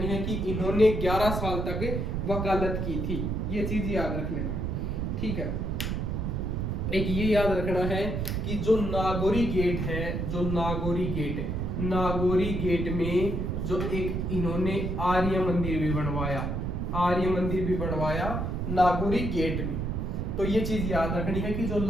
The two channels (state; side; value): noise; right; rumble, 1 dB below the sound